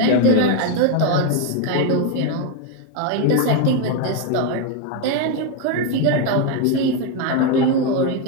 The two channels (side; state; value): both; different; correlation 0.02